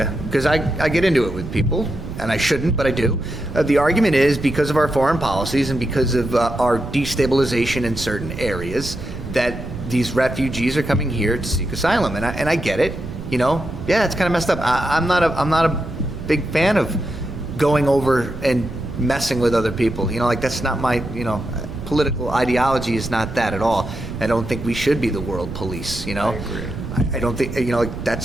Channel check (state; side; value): noise; right; rumble, 9 dB below the sound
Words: because I get into it with people, and I shouldn't, but I do. The argument is because of our foreign policies and because of our destabilization in certain areas that these refugees are coming here to seek asylum, and I get it. Yeah, it's kind of messed up. I'm not a big fan of going over and messing with other people. That's not my political ideology is not that at all. I don't think we should be the world police. I agree. I don't think